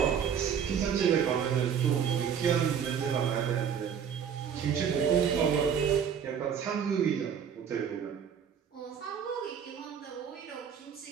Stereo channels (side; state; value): left; quieter; 7.8 dB